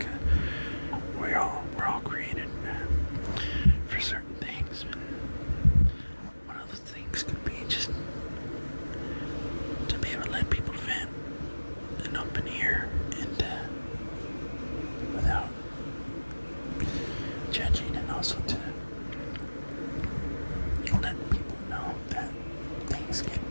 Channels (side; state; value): both; inverted; correlation -1.00